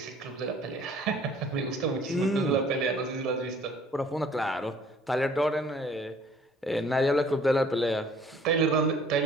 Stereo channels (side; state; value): both; normal; correlation 0.55